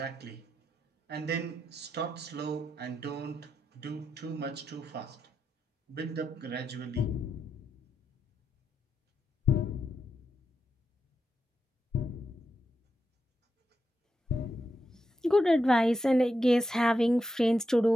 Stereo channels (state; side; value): normal; both; correlation 0.85